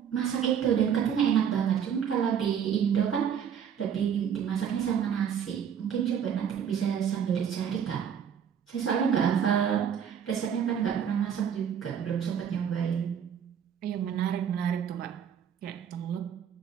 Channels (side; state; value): left; quieter; 8.2 dB